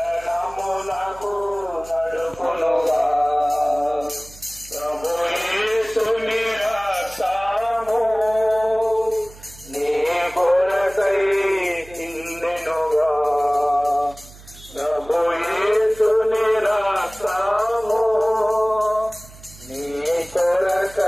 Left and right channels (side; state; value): right; noise; hum, 20 dB below the sound